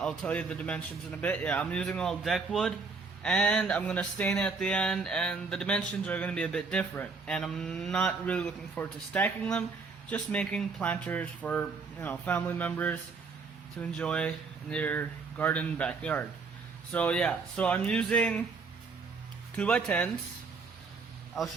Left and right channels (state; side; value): quieter; left; 4.6 dB